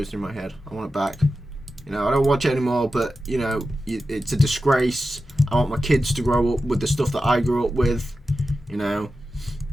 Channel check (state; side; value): normal; both; correlation 0.92